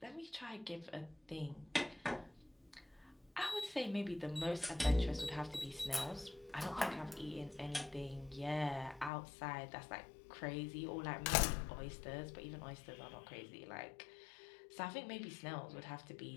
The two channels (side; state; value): right; drops out; at 9.1 s